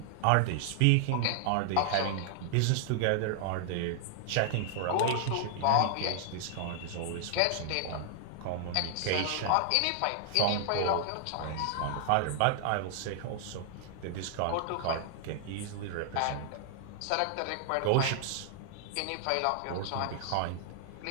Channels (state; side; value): different; both; correlation -0.01